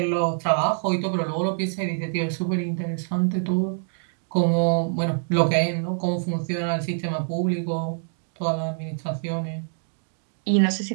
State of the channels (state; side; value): silent; left; digital silence